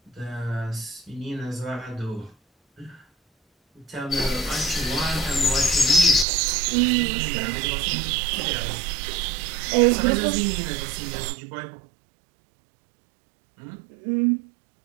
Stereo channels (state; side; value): drops out; left; at 6.2 s